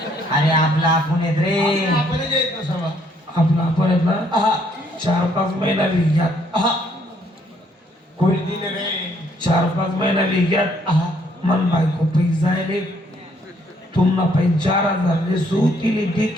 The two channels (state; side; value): normal; both; correlation 0.67